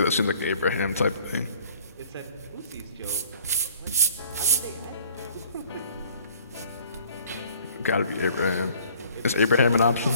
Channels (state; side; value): inverted; both; correlation -0.54